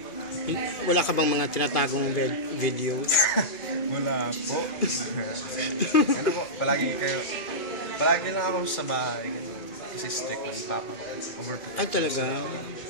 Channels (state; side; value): late; right; 2.4 ms